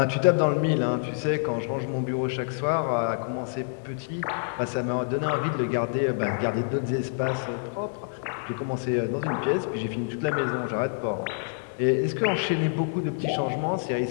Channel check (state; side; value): silent; right; digital silence